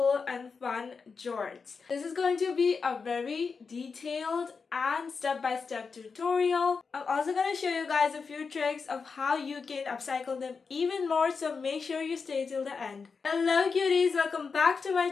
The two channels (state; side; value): quieter; right; 5.1 dB